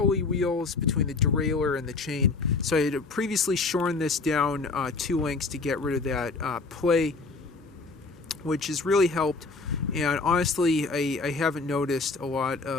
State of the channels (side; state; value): right; quieter; 3.9 dB